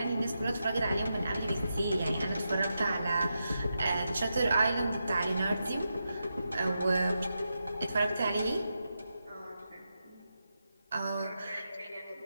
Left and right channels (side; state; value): both; inverted; correlation -0.87